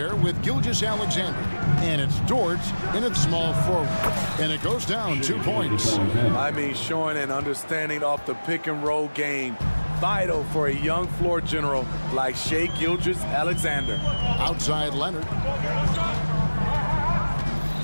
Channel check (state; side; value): inverted; both; correlation -1.00